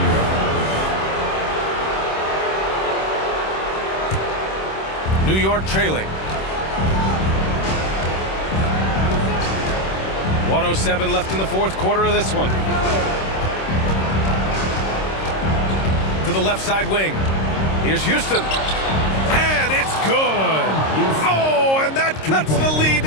New York. New York trailing. 1:07 left in the fourth quarter of this one. To the left side wing. Here's Houston. And it's good. Oh, and that cuts the lead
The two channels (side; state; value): right; late; 26 ms